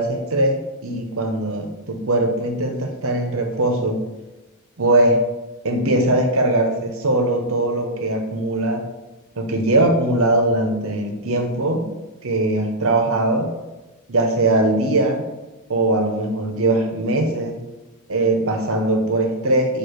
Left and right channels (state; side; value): normal; both; correlation -0.11